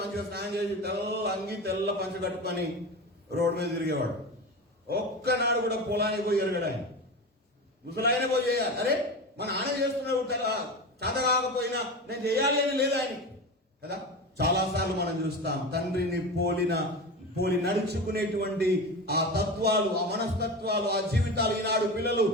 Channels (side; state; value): both; normal; correlation 0.26